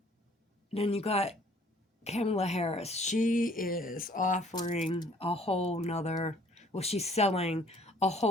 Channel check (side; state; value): both; normal; correlation 0.58